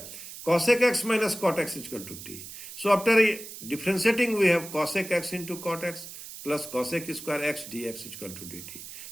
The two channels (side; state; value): right; noise; hiss, 12 dB below the sound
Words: cosec x minus cot x is equal to t. So after differentiating we have cosec x into cot x plus cosec square x dx is equal to dt.